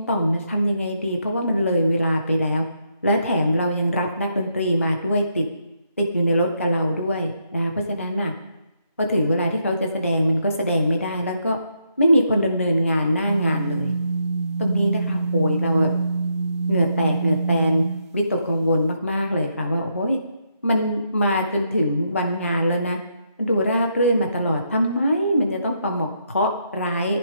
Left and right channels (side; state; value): both; inverted; correlation -0.78